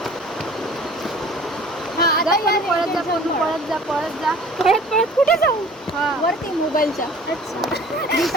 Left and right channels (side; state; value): both; normal; correlation 0.48